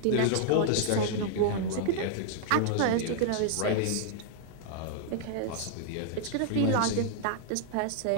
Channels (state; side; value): different; both; correlation -0.01